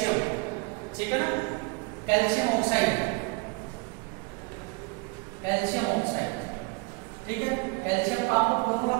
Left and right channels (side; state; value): left; quieter; 29.3 dB